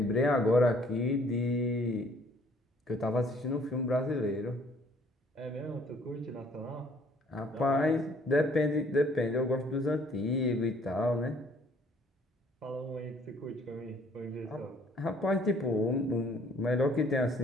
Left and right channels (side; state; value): both; normal; correlation 0.60